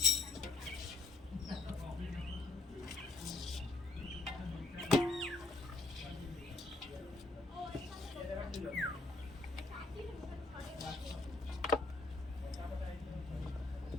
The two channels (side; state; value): right; quieter; 3.2 dB